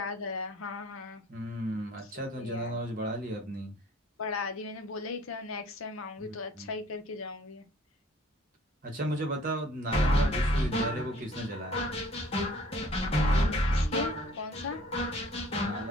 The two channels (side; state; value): both; normal; correlation 0.53